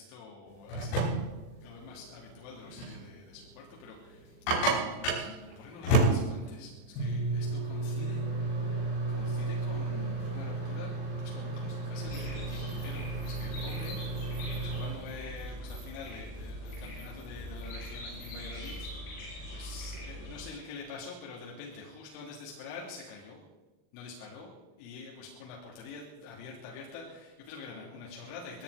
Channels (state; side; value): late; right; 40 ms